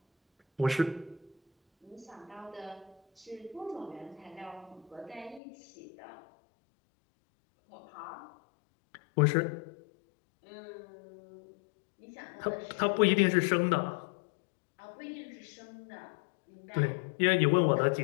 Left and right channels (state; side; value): drops out; right; at 5.4 s